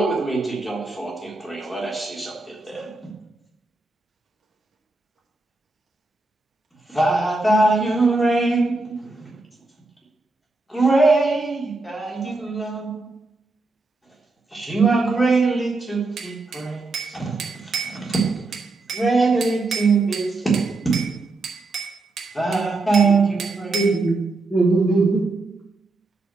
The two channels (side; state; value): left; quieter; 3.2 dB